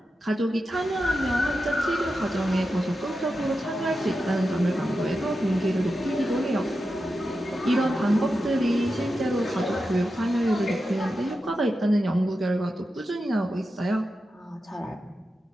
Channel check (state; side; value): normal; both; correlation 0.90